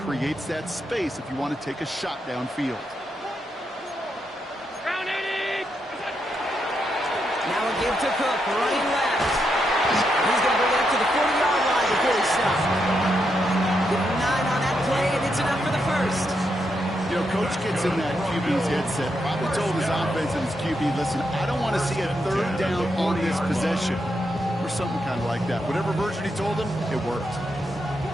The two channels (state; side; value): normal; both; correlation 0.82